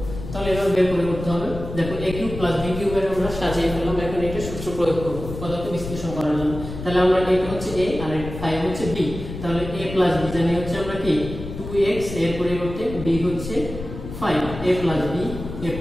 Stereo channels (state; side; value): noise; left; rumble, 9 dB below the sound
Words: তাহলে এভাবে বের করে করতে হবে। দেখো a কিউব প্লাস b কিউবের আমরা সাজিয়ে ফেললাম, এখন এটা সূত্র প্রয়োগ করব উৎপাদকে বিশ্লেষণ করার জন্য। তাহলে আমরা এটা হচ্ছে a আর 5 হচ্ছে b, তাহলে a প্লাস b জানি হচ্ছে আমরা কি 2x, এর পরিবর্তে b হচ্ছে 5, a plus